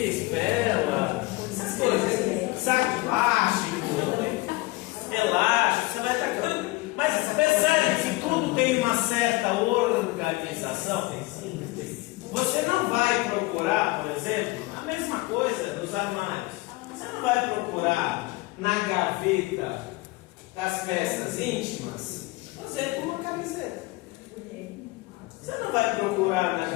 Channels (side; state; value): right; quieter; 22.1 dB